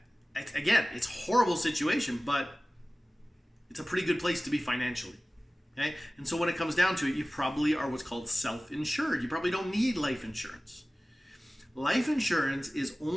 again, it's a horrible situation, but it's a pretty good place to be financially. Okay? And so when it comes down to it, you probably are what's called self-insured. You probably don't need life insurance. Life insurance is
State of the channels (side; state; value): both; normal; correlation 0.97